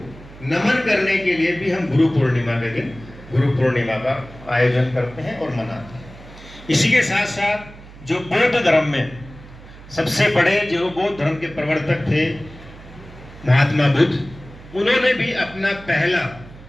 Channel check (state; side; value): noise; right; hum, 18 dB below the sound